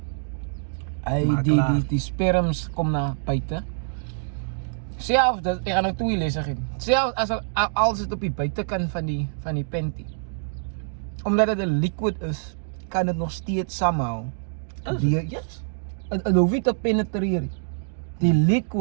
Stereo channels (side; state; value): left; silent; digital silence